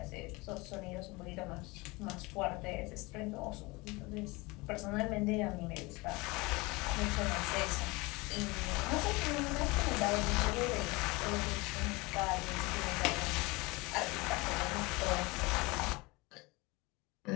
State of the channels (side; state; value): right; quieter; 24.3 dB